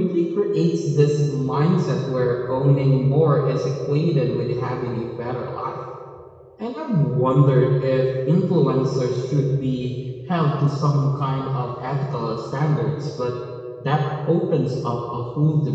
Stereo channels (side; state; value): both; identical; correlation 1.00